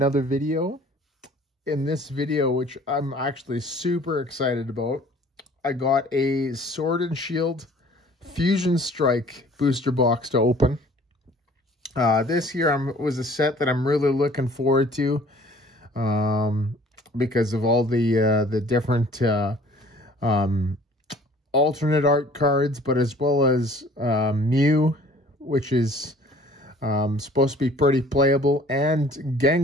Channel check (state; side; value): normal; both; correlation 0.52